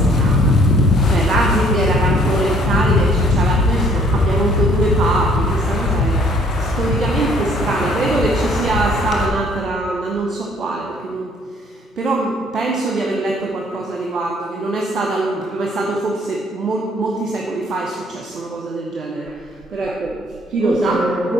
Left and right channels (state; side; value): normal; both; correlation 0.61